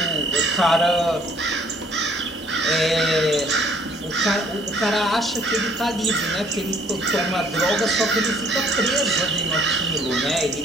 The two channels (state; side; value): normal; both; correlation 0.60